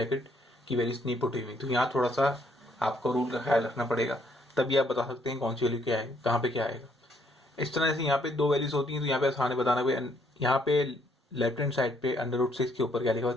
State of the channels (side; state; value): both; normal; correlation 0.69